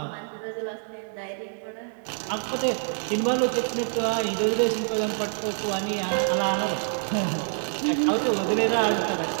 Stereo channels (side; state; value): left; silent; 61 dB below the other